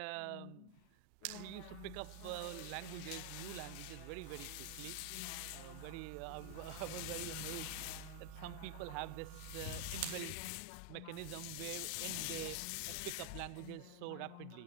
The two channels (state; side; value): different; both; correlation 0.00